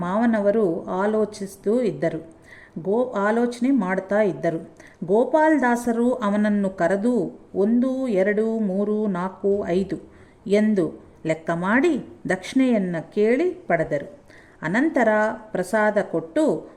ಮಾವನವರು ಆಲೋಚನೆ ಮಾಡ್ತಾ ಇದ್ದರು. ಗೋಪಾಲ್ದಾಸರು ಅವನನ್ನು ಕರೆದು 1, 2, 3, 4, 5 ಎಂದು ಲೆಕ್ಕ ಮಾಡಿ ದಕ್ಷಿಣೆಯನ್ನು ಕೇಳಿ ಪಡೆದರು. ಅನಂತರ ಪ್ರಸಾದ ಕೊಟ್ಟು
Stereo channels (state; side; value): identical; both; correlation 1.00